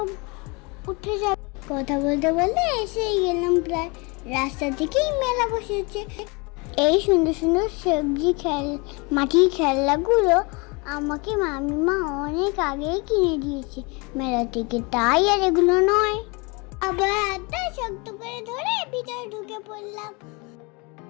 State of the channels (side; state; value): right; quieter; 28.8 dB